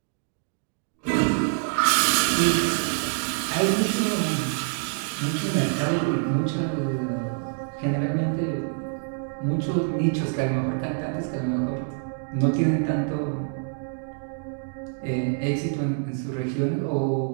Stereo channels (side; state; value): left; silent; digital silence